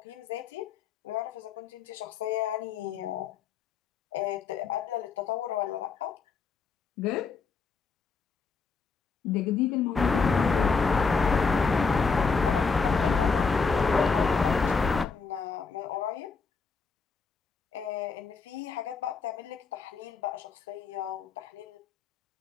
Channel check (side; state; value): right; quieter; 5.0 dB